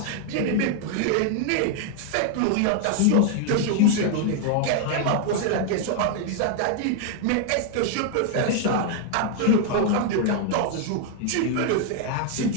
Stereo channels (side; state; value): both; different; correlation 0.00